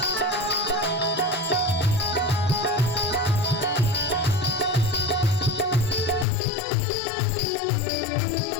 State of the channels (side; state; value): right; drops out; at 6.2 s